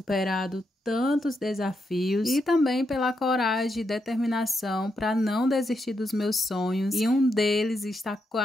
tantos desafios e também pela coragem e determinação para não desistir dos meus sonhos, e um deles está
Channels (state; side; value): normal; both; correlation 0.82